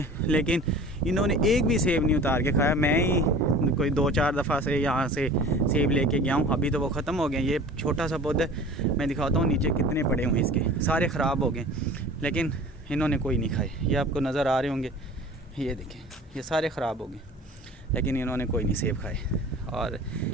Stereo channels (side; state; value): both; normal; correlation 0.42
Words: लेकिन इन्होंने एक भी सेब नहीं उतार के खाया। मैं ही कोई 2-4 दफ़ा से यहाँ से सेब लेके गया हूँ, अभी तो वो ख़त्म हो गए। ये छोटा सा पौधा, मैं दिखाता हूँ नीचे कितने पड़े हुए हैं इसके, सारे ख़राब हो गए, लेकिन इन्होंने कोई नहीं खाए। ये आपको नज़र आ रहे होंगे, ये देखें, ये सारे ख़राब हो गए, लेकिन इन्होंने कोई नहीं सेब खाए। और